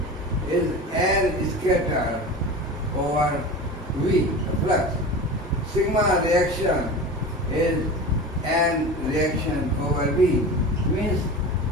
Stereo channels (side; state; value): both; normal; correlation 0.31